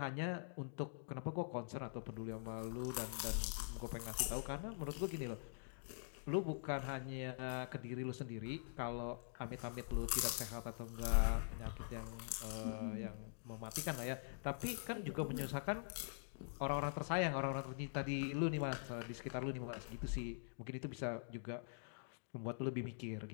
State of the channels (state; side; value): silent; right; digital silence